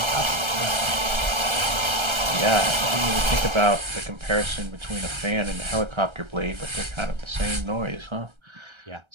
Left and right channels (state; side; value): late; left; 1.3 ms